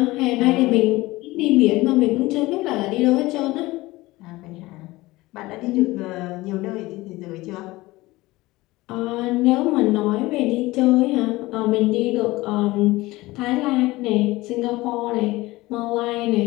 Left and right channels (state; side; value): quieter; right; 19.7 dB